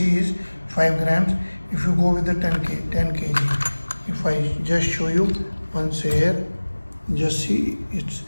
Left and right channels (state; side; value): inverted; both; correlation -1.00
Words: is 5 grams. If you go with the 10 kg, if I just show you once here, just see it's